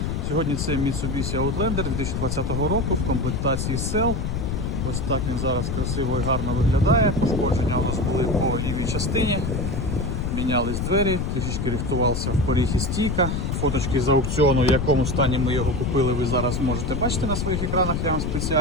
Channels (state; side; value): noise; left; rumble, 1 dB below the sound